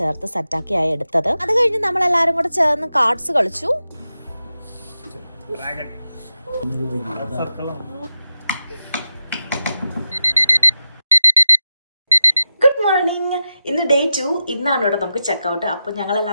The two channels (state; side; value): inverted; both; correlation -0.91